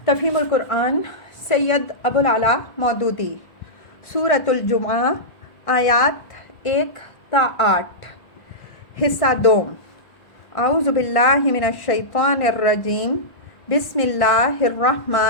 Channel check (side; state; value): right; late; 1.5 ms